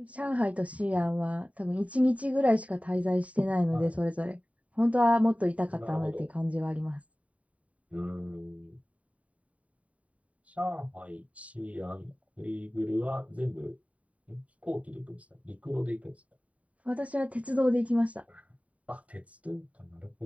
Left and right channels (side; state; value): left; late; 0.067 ms